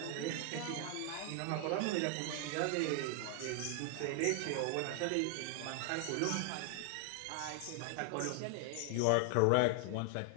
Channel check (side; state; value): both; different; correlation 0.00